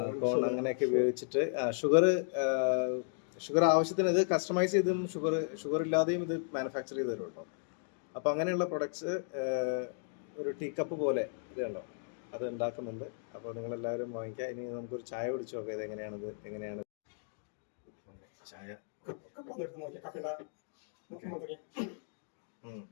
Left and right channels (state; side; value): silent; right; digital silence